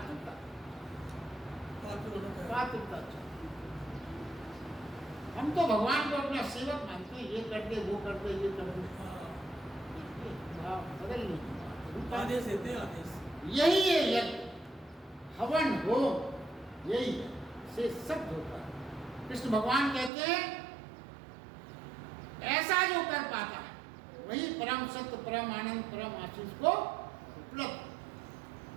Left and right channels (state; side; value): drops out; left; at 20.1 s